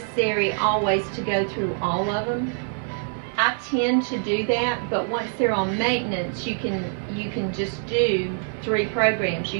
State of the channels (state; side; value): silent; left; digital silence